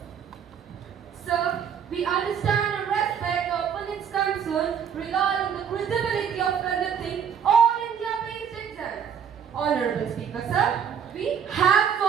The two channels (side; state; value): left; quieter; 7.8 dB